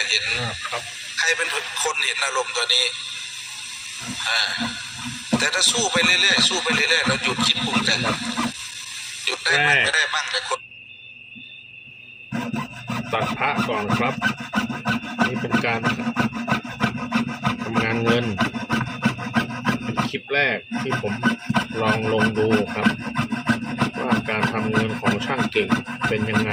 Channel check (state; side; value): identical; both; correlation 1.00